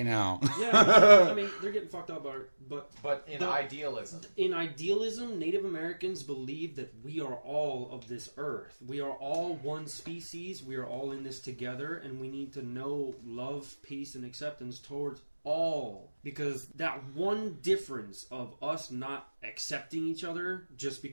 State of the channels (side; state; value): both; inverted; correlation -1.00